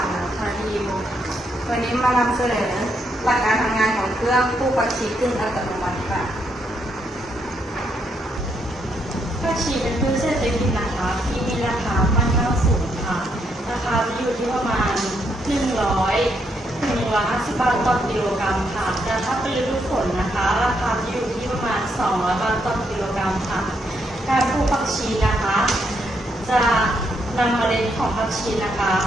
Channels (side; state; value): both; normal; correlation 0.76